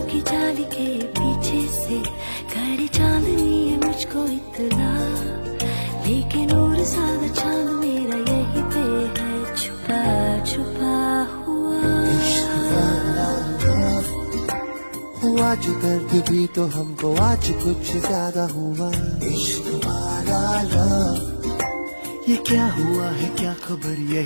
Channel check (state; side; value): inverted; both; correlation -1.00